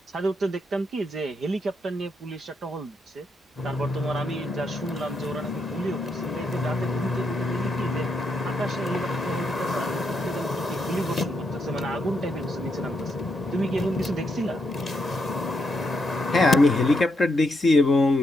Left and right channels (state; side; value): normal; both; correlation 0.80